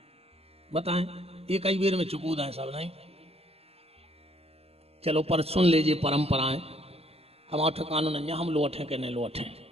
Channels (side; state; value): left; late; 0.29 ms